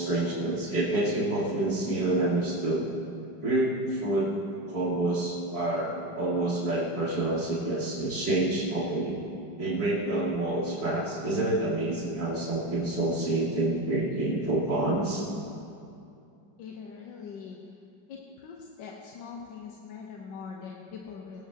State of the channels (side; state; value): right; late; 5.0 ms